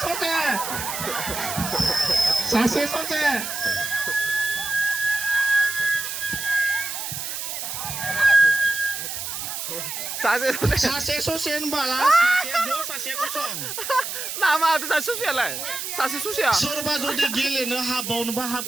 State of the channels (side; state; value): right; noise; hiss, 5 dB below the sound